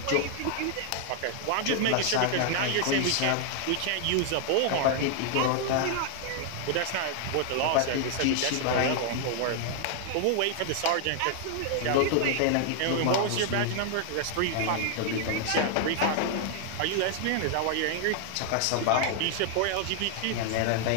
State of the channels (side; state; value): both; different; correlation 0.00